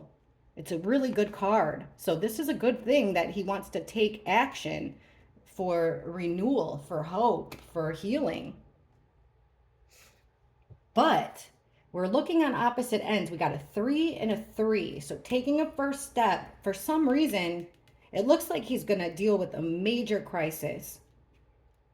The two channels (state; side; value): identical; both; correlation 1.00